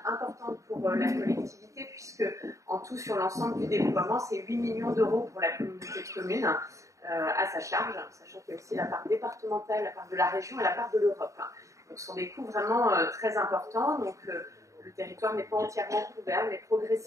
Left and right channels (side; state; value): left; late; 0.15 ms